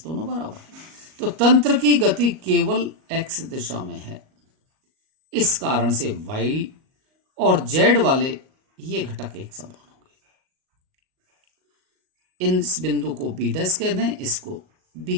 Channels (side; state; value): left; late; 38 ms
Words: दोनों बराबर है, तो तंत्र की गति केवल एक्स दिशा में है, इस कारण से वाई और जेड वाले ये घटक एक समान होंगे। इस बिंदु को बी डैश कह दें, इसको बी